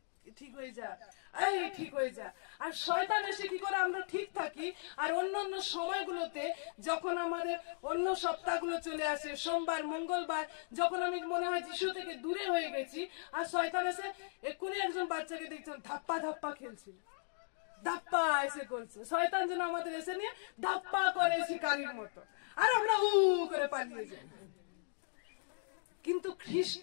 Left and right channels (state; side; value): silent; right; digital silence